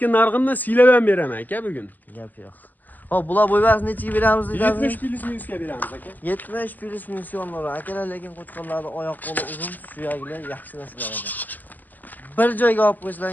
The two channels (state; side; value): late; right; 0.084 ms